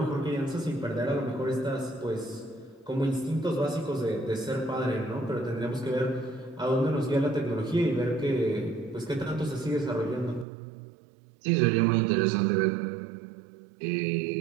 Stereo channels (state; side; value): drops out; left; at 10.5 s